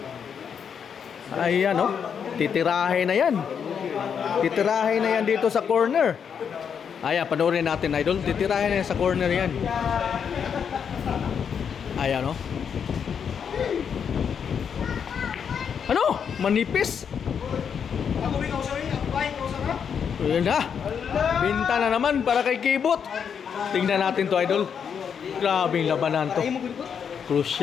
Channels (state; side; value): quieter; right; 7.2 dB